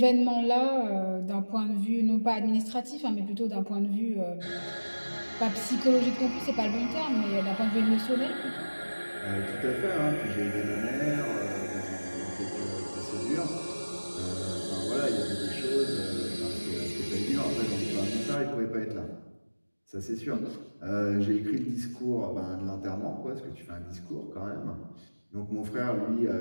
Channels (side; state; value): both; inverted; correlation -1.00